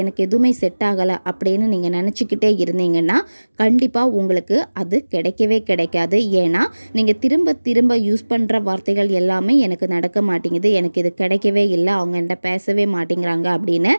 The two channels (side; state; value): both; inverted; correlation -1.00